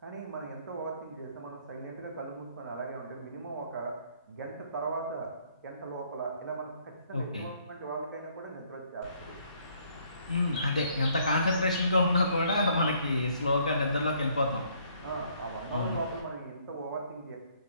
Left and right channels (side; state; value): both; inverted; correlation -0.65